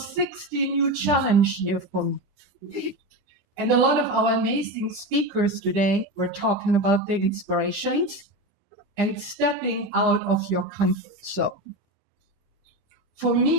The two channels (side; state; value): left; late; 9.9 ms